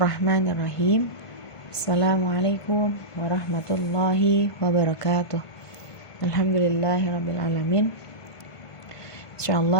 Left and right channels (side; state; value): right; late; 1.5 ms